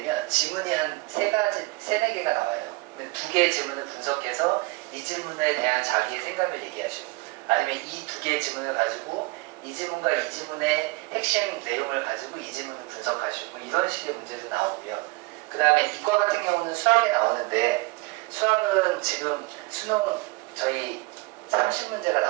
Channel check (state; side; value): quieter; left; 24.5 dB